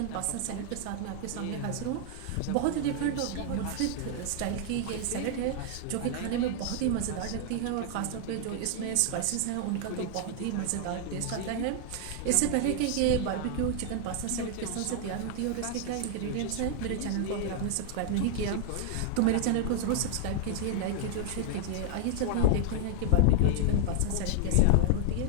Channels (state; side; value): different; both; correlation 0.00